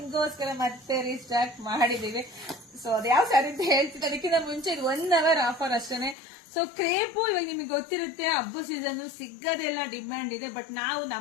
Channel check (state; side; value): drops out; right; at 6.2 s